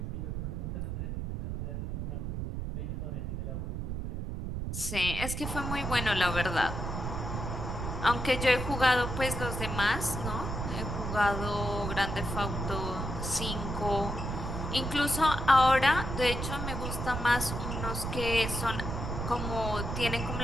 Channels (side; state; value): right; noise; rumble, 4 dB below the sound